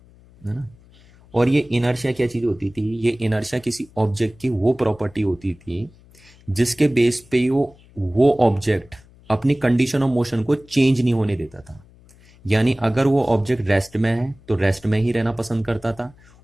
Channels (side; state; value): left; noise; hum, 26 dB below the sound